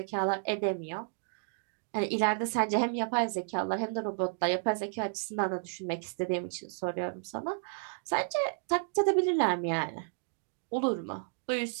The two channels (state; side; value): silent; left; digital silence